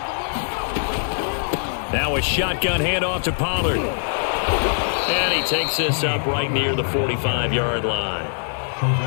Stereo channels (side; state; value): right; silent; digital silence